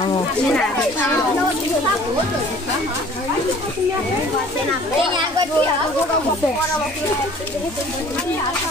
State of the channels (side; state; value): both; normal; correlation 0.51